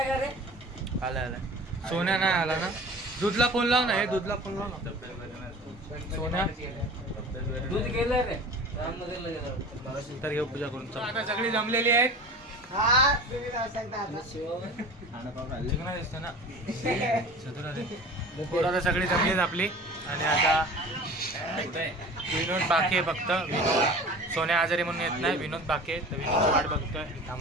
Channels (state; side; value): normal; both; correlation 0.39